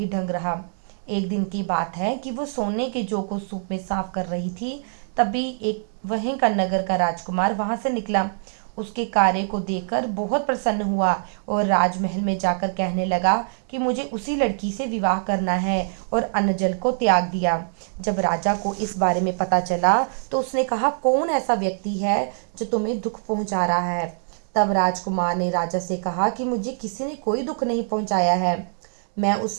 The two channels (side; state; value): left; silent; 63 dB below the other